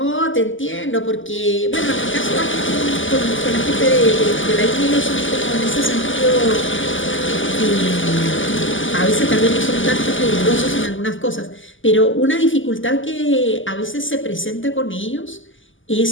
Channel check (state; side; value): late; right; 0.57 ms